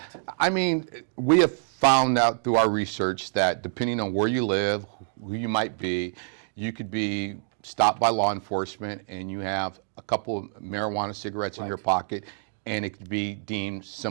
I mean, we have found out through our research that depending on where you live, who you might be, you could be stopped by law enforcement and you have a couple of marijuana cigarettes in your pocket, and it could be deemed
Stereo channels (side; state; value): left; silent; digital silence